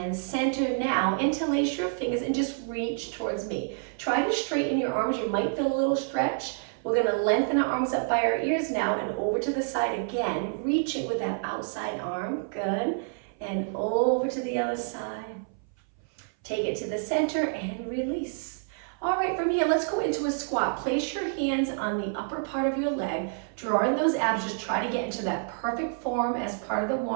center now, interlace your fingers and just reach towards me. Try to straighten your arms, you might feel a little stretch. We're gonna lengthen our arms up by our ears now and over to the side again, reaching with that outside arm, good. And over to the other side. Take it to the center and release. All right, from here, let's go into a squat. Place your hands on the upper part of your leg, draw in those abs, just try to get into that perfect form as part of the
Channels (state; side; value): silent; left; 59 dB below the other